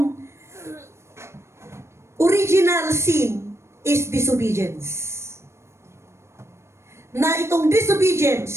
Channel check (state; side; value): late; left; 0.13 ms